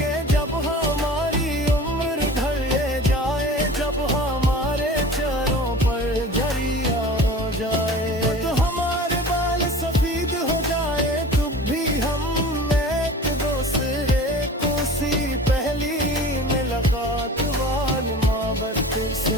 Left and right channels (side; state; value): both; normal; correlation 0.39